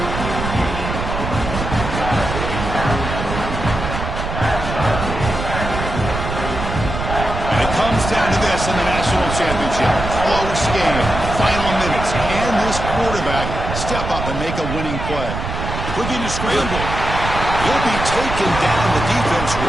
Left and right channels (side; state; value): right; noise; rumble, 5 dB below the sound